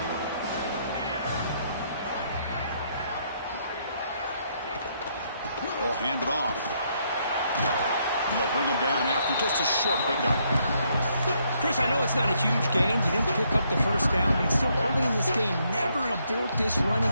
They'll hand it off. And they'll bring him down after just a short pickup. Chris, I know it's not a huge gain. You didn't pick up the first down, but it's still early in this game. Never abort this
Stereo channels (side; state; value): both; inverted; correlation -0.73